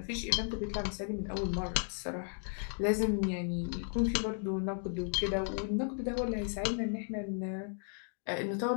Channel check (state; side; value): silent; right; 55 dB below the other